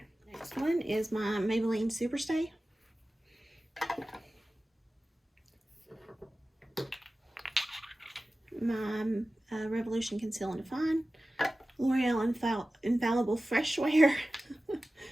Next one is my Maybelline Superstay. My Revolution Conceal and Define. L'Oreal Infallible Fresh Wear.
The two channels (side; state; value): both; normal; correlation 0.96